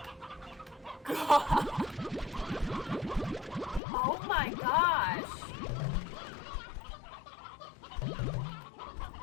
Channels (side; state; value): right; drops out; at 3.8 s